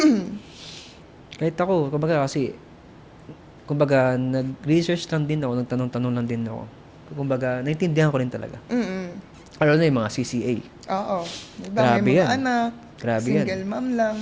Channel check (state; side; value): identical; both; correlation 1.00